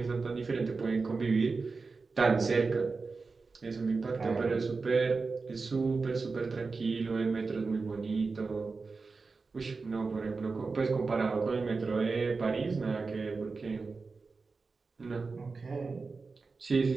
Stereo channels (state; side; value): quieter; left; 4.3 dB